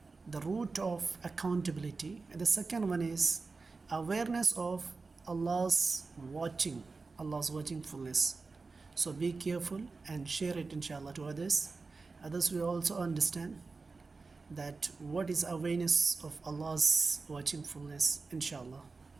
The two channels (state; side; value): quieter; left; 4.1 dB